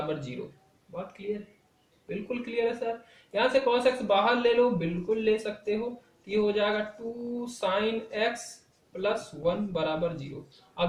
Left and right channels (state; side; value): identical; both; correlation 1.00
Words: 0। बात क्लियर है? बिल्कुल क्लियर है सर। यहां से cos x बाहर ले लो, बिल्कुल ले सकते हो। ये हो जाएगा 2 sin x प्लस 1 बराबर 0।